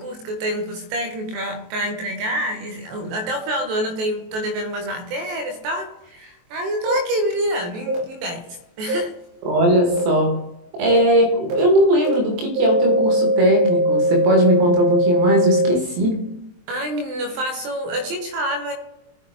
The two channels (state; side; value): late; left; 23 ms